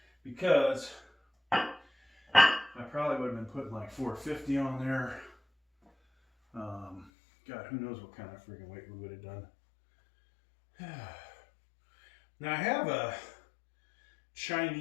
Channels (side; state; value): right; drops out; at 7.1 s